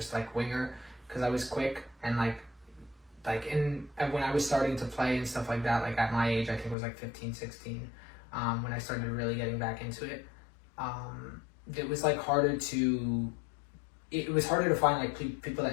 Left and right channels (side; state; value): right; drops out; at 6.8 s